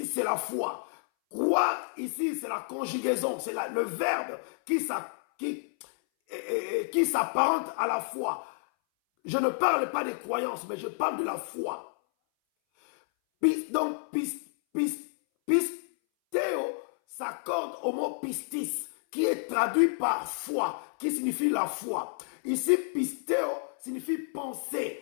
c'est la foi. Croire ici, c'est la conjugaison. C'est le verbe qui s'apparente à la foi. Je ne parle pas des croyances, mais je parle de la foi. Donc, pistéo s'accorde au mot pistis, qui est traduit par foi, qui signifie la foi. Ici, pistéo signifie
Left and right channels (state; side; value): silent; right; 58 dB below the other